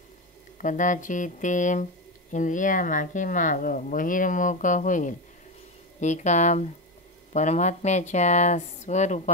कदाचित ते इंद्रिया मागेमाग बहिर्मुख होईल. एका परमात्म्याच्या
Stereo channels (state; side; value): normal; both; correlation 0.14